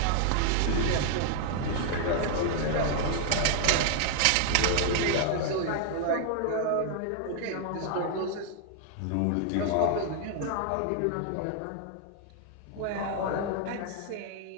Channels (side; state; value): both; different; correlation 0.00